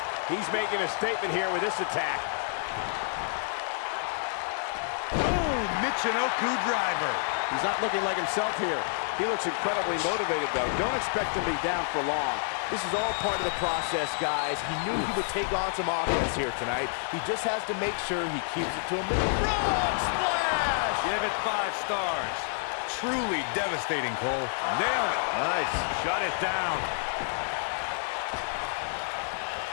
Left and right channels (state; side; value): silent; right; digital silence